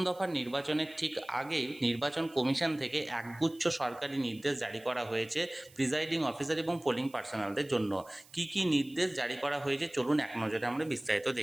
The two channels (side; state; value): right; noise; hiss, 24 dB below the sound